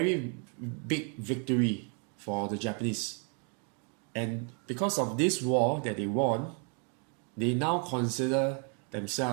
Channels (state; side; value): quieter; left; 39.5 dB